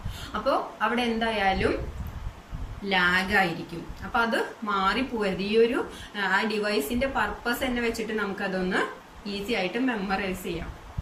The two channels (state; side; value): identical; both; correlation 1.00